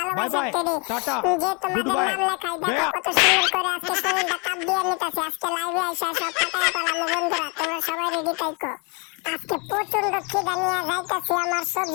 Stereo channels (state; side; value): quieter; right; 32.6 dB